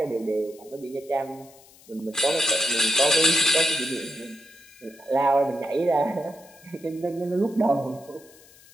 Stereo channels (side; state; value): left; noise; hiss, 25 dB below the sound